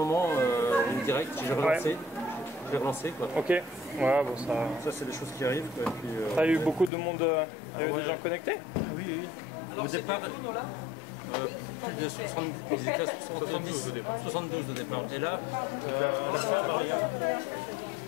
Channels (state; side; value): drops out; right; at 6.9 s